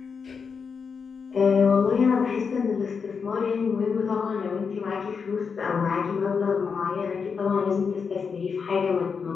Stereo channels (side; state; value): right; quieter; 5.8 dB